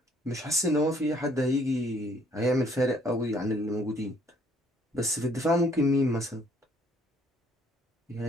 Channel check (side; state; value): both; normal; correlation 0.63